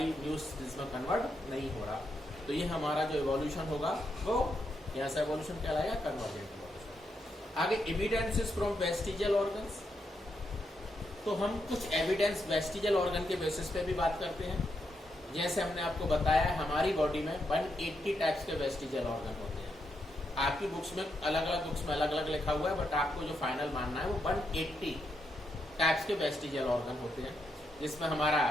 न्यू स्पीशीज में कन्वर्ट नहीं हो रहा। तो ये हमारा जो एवोल्यूशन होगा वो यहाँ से एवोल्यूशन कहलाएगा कन्वर्जेंट एवोल्यूशन। आगे एविडेंसेस फ्रॉम वेस्टिजियल ऑर्गन्स, तो हम कुछ एविडेंस वेस्टिजियल ऑर्गन के बेसिस पे भी बात करते हैं। जैसे हमने आपको बताया हमारी बॉडी में 180 टाइप्स के वेस्टिजियल ऑर्गन होते हैं। आपकी बुक्स में अलग अलग लिखा हुआ है, बट आपको जो फाइनल मानना है वो 180 टाइप्स के वेस्टिजियल ऑर्गन होते हैं, जिसमें हमारा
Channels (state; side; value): normal; both; correlation 0.81